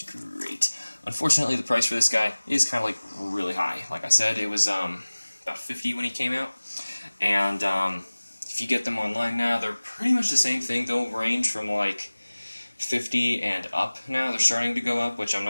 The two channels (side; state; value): both; inverted; correlation -1.00